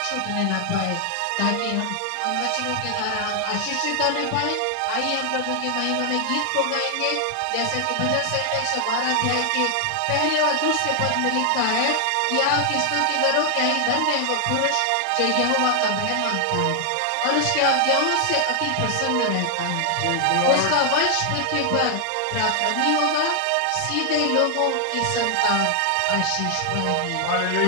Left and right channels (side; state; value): both; different; correlation 0.00